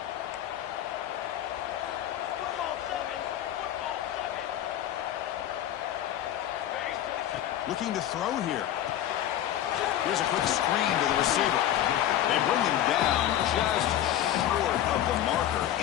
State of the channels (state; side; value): quieter; right; 11.8 dB